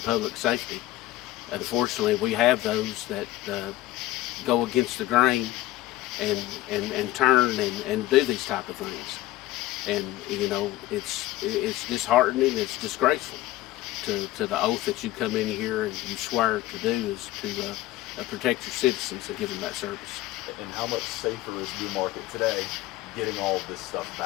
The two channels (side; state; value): right; quieter; 16.2 dB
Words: safety, unfortunately we have those that go against the grain and turn and do these type of things. And, you know, it's disheartening, it's disgraceful to the oath that you come in here and you swear to do is to protect your citizens and give them that service. And how much safer is Newmarket today getting all of this stuff